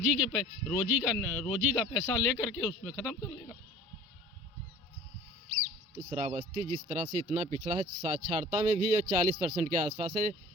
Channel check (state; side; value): normal; both; correlation 0.45